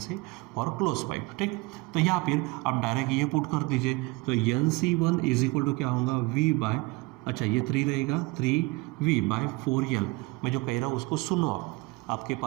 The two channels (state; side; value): quieter; left; 23.8 dB